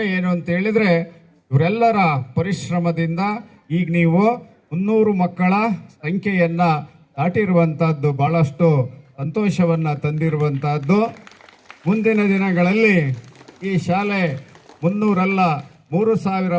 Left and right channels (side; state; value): both; identical; correlation 1.00